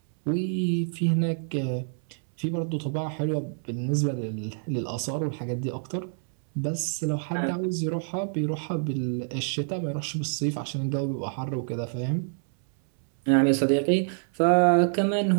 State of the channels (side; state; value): left; silent; 60 dB below the other